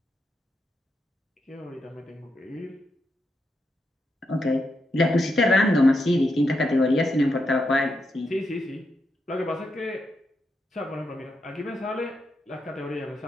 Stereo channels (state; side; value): normal; both; correlation 0.83